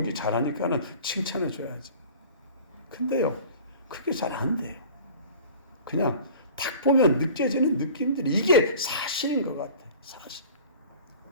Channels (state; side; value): inverted; both; correlation -0.43